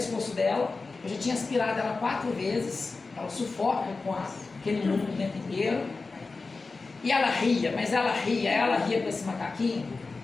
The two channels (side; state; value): right; quieter; 3.9 dB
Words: dela. Eu já tinha aspirado ela 4 vezes. Ela sufoca com aquele mundo o tempo inteiro. E ela ria, mas ela ria com esse macaquinho.